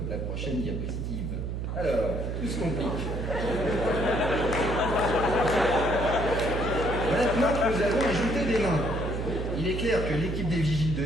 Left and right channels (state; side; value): noise; right; hum, 3 dB below the sound